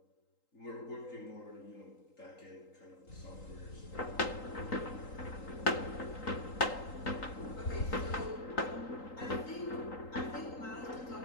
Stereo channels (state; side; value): late; right; 3.8 ms